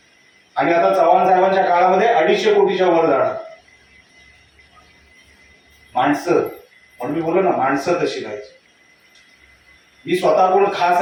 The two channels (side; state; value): both; identical; correlation 1.00